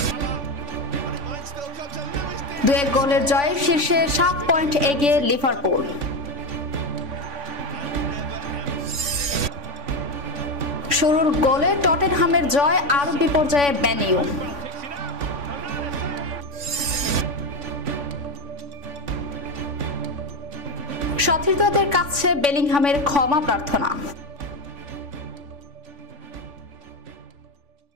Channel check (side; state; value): left; late; 3.5 ms